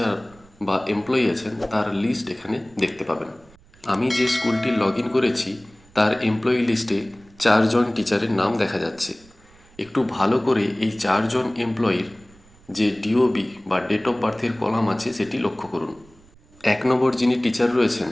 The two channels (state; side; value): noise; right; rumble, 27 dB below the sound